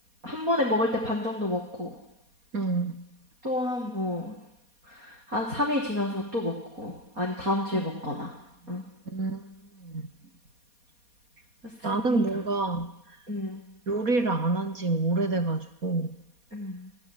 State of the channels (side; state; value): left; late; 4.2 ms